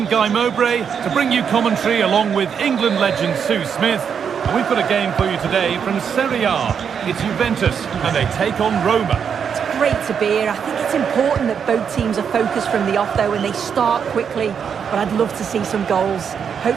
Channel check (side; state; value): left; quieter; 7.2 dB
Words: Guy Mowbray to bring you commentary along with England legend Sue Smith. And we've got a game for you today from Serie A. It's Juventus and they take on Roma. It's great to be here. I think it's important that both teams are focused from the off though and they start quickly. But I'd love to see some goals.